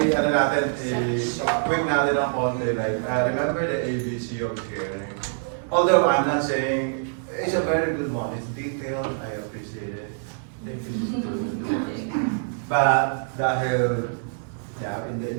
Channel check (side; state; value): left; silent; digital silence